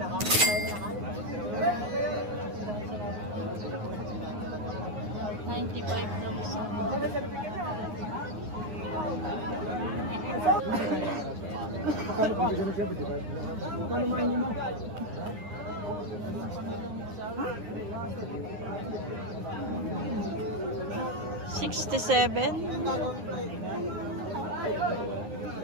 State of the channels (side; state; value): left; late; 9.6 ms